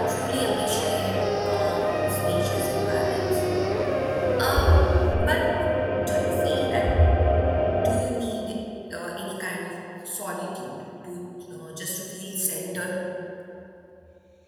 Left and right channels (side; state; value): both; identical; correlation 1.00